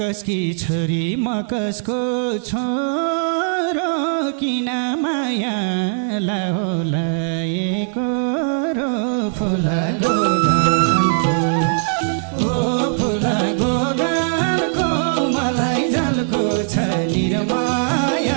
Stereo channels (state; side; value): silent; left; 66 dB below the other